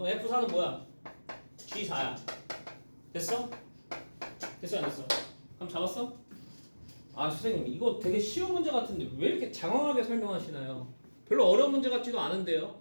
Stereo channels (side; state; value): both; inverted; correlation -1.00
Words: F4는 뭐야? G4야. 됐어? 됐어 안 됐어? 그럼 잡았어? 아 선생님 이거 되게 쉬운 문제 같은데 왜 이렇게 장황하게 설명하시나요? 별로 어려운 문제 같지도 않은데요.